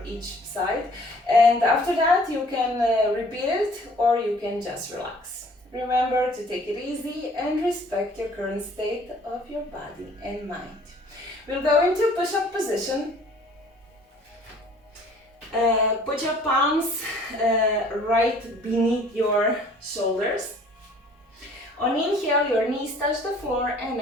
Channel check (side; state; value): both; normal; correlation 0.54